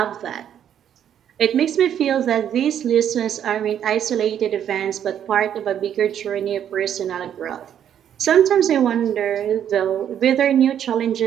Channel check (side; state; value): left; quieter; 9.6 dB